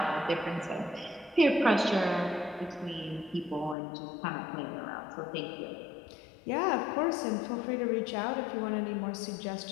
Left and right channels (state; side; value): drops out; right; at 3.8 s